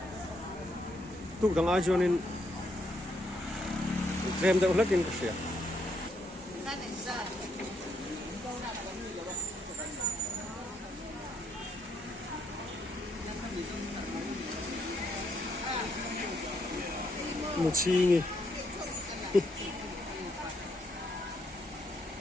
tu dang ai jonin trem da ulakin ka sia một chi nhỉ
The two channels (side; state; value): both; normal; correlation 0.75